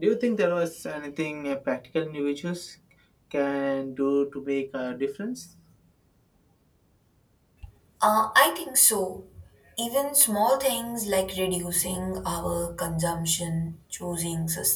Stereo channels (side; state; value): both; identical; correlation 1.00